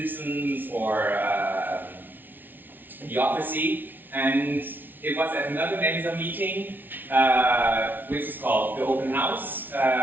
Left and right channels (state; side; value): late; left; 0.090 ms